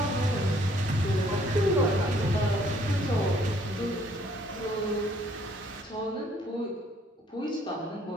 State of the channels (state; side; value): normal; both; correlation 0.63